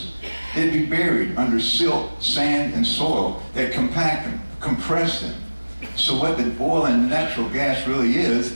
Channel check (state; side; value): inverted; both; correlation -1.00